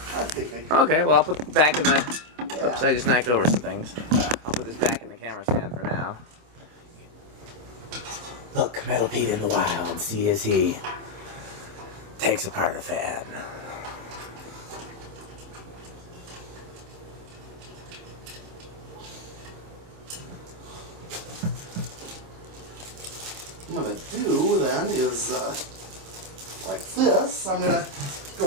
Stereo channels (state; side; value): late; left; 26 ms